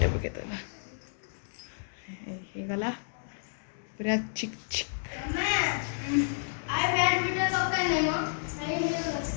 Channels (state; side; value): silent; right; digital silence